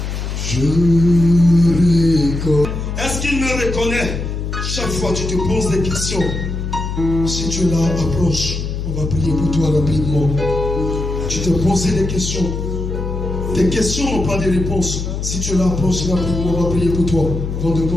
Je reconnais. Est-ce qu'il me reconnaît? Chaque fois tu te poses des questions. Si tu es là, approche. On va prier pour toi rapidement. Tu te poses des questions. Tes questions n'ont pas de réponse. Si tu es là, approche rapidement. On va prier pour toi avant de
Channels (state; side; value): noise; left; hum, 4 dB below the sound